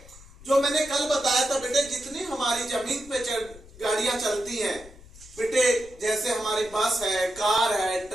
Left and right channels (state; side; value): noise; left; rumble, 21 dB below the sound